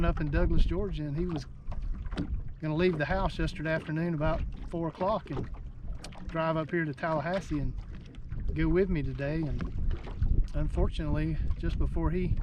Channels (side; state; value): both; identical; correlation 1.00